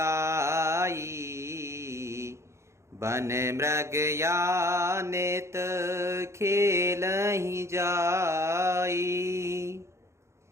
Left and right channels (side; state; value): left; late; 0.13 ms